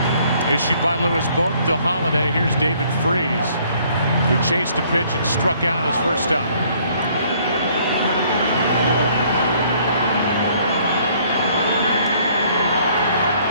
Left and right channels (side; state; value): both; inverted; correlation -0.62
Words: issued by Lewis both to Holiday. Here's David Freese, who chased a pitch and struck out his first time.